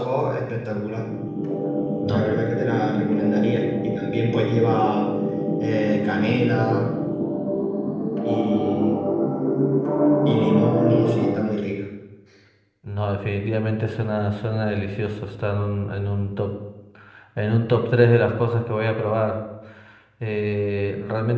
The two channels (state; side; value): identical; both; correlation 1.00